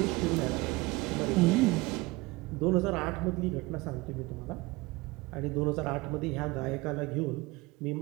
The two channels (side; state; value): left; quieter; 22.5 dB